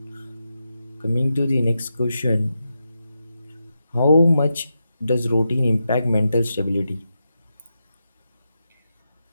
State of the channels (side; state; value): both; inverted; correlation -0.88